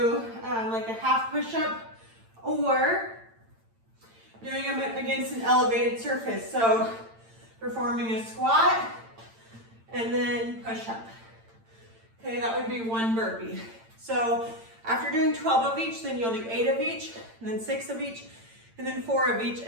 like a half push-up or doing them against an elevated surface. So performing a squat and then push-up. Okay, that would be 1 burpee. So after doing 12 of each, then you'll do 8 of each, and then 6 of each, and then 4 of each,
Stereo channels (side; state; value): left; late; 8.8 ms